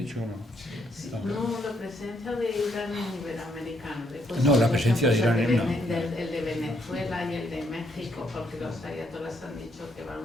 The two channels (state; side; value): normal; both; correlation 0.73